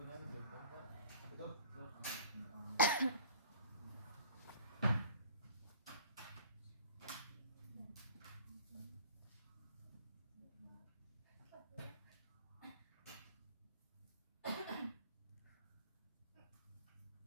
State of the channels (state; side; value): inverted; both; correlation -0.48